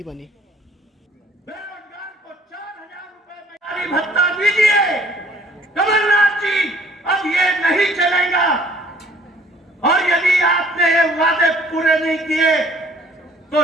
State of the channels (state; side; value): normal; both; correlation 0.57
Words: बनी। बेरोजगार को 4,000 रुपए भत्ता दीजिए कमलनाथ जी, अब ये नहीं चलेगा। और यदि आपने ये वादे पूरे नहीं किए तो